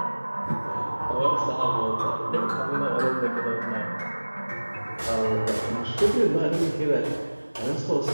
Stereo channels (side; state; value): both; inverted; correlation -1.00